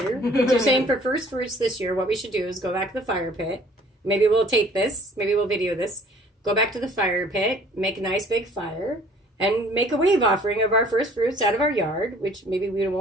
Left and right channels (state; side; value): normal; both; correlation 0.54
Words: You're saying for first fruits this year, what we should do is go back to the fire pit. Maybe we'll tape this. Maybe we'll video this. Go back to the fire pit, make a nice big fire, and make a wave offering of our first fruits out of our yard, which maybe we